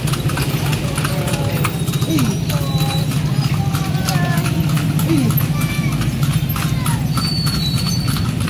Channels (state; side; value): identical; both; correlation 1.00